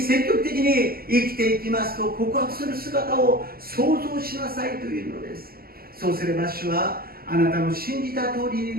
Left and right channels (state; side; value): late; left; 0.44 ms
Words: 極的に生きていきますと告白する姿を想像しなさいというのです。そうすれば主はあなたの信じた通りに